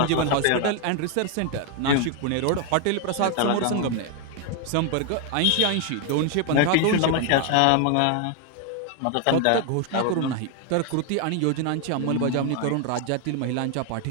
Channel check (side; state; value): both; different; correlation 0.01